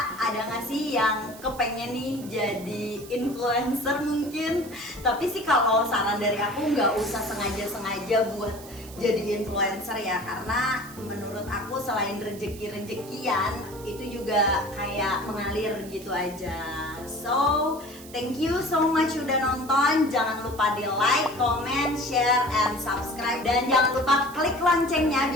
ada nggak sih yang kepengen nih jadi influencer mungkin? Tapi sih kalau saran dari aku, nggak usah sengaja buat jadi influencer ya, karena menurut aku selain rezeki-rezekian itu juga kayak mengalir gitu aja. So thank you so much udah nonton. Jangan lupa di like, comment, share, and subscribe, dan jangan lupa klik loncengnya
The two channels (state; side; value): noise; right; hiss, 18 dB below the sound